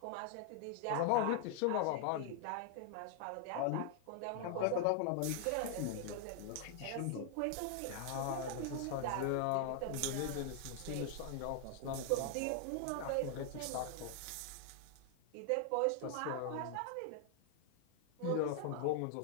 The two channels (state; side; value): different; both; correlation 0.00